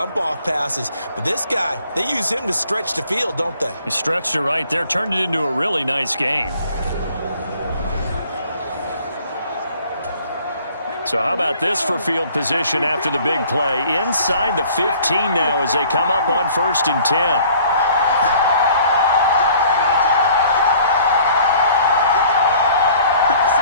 off passes. But this guy, they use him to stretch the field, don't they? He stretched it right there, turned it into a really nice gain. So how about this for field position after the big play? Inside the 15 now as they come up on 1st and 10.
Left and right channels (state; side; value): inverted; both; correlation -0.54